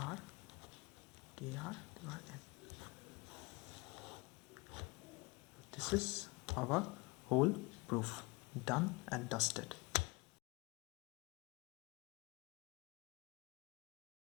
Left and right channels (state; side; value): quieter; right; 25.6 dB